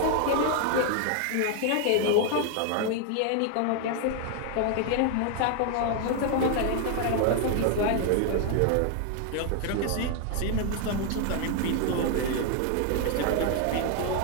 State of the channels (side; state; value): both; different; correlation 0.00